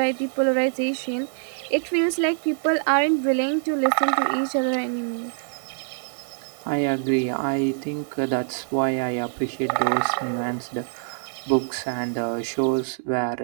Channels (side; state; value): left; silent; digital silence